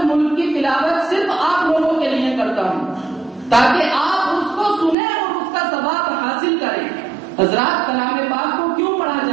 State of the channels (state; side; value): drops out; left; at 5.0 s